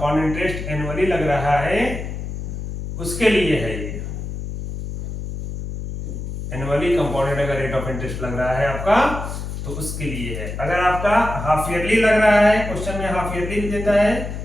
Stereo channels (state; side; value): noise; left; hum, 6 dB below the sound